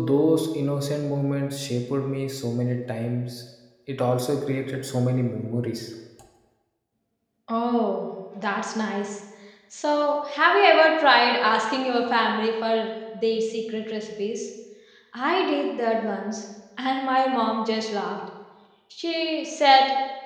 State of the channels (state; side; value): identical; both; correlation 1.00